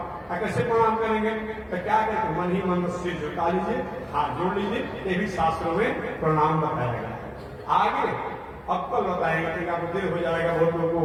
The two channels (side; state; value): both; identical; correlation 1.00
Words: कैसे प्रणाम करेंगे? तो क्या कहते मन ही मन सिर झुका लीजिए, हाथ जोड़ लीजिए, ये भी शास्त्रों में प्रणाम बताया गया। आगे अब कल बताएंगे क्योंकि आपको देर हो जाएगा, बहुत